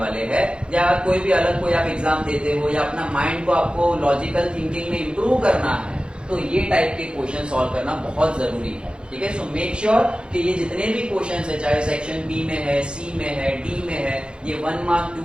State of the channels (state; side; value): late; left; 0.053 ms